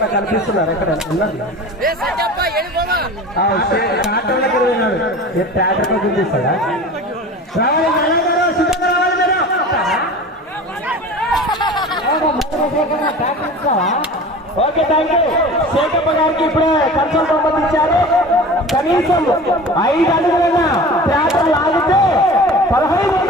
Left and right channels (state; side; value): normal; both; correlation 0.37